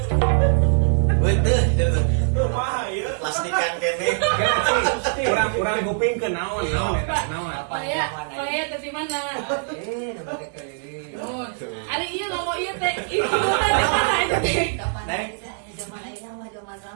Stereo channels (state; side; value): silent; left; digital silence